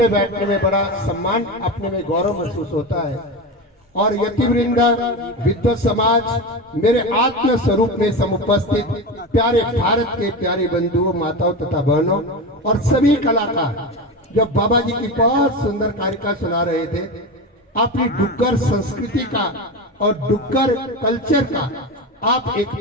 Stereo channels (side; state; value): both; normal; correlation 0.22